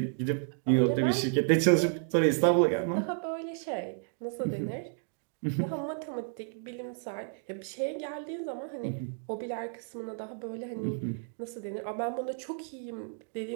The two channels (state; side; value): silent; left; 57 dB below the other